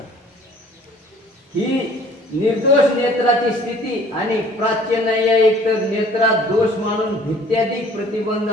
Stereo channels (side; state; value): both; normal; correlation 0.53